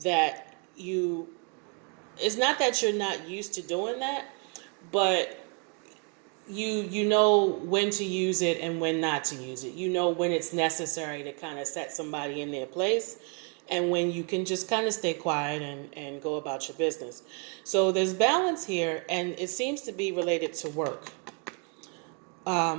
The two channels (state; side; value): quieter; left; 37.5 dB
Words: that it's not that you're not used to doing that, but you know when to use it and when not to use it. You know when it's necessary to kind of set somebody in their place, and when you can just kind of stay quiet and go about your business. So there's balance here, and it seems to be related to work.